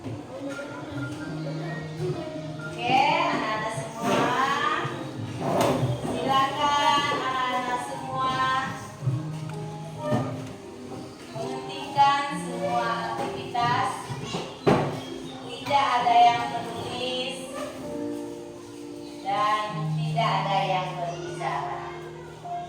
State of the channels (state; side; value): identical; both; correlation 1.00